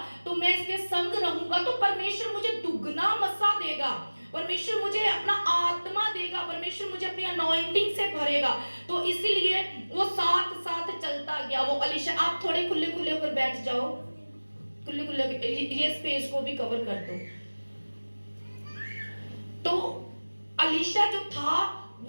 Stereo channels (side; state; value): both; inverted; correlation -1.00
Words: तो मैं इसके संग रहूंगा तो परमेश्वर मुझे दुगना मसा देगा, परमेश्वर मुझे अपना आत्मा देगा, परमेश्वर मुझे अपनी अनॉइंटिंग से भरेगा। तो इसीलिए वो साथ साथ चलता गया। वो अलीशा, आप थोड़े खुले खुले होकर बैठ जाओ, खुले खुले, ये स्पेस को भी कवर कर दो। तो अलीशा जो था